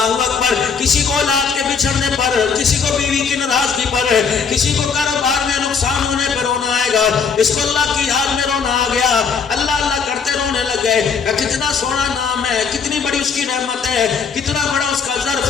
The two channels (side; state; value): right; quieter; 5.9 dB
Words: اکبر، کسی کو اولاد کے بچھڑنے پر، کسی کو بیوی کی ناراضگی پر، کسی کو کاروبار میں نقصان ہونے پر رونا آئے گا، اس کو اللہ کی یاد میں رونا آ گیا، اللہ اللہ کرتے رونے لگے، کتنا سونا نام ہے، کتنی بڑی اس کی رحمت ہے، کتنا بڑا اس کا ظرف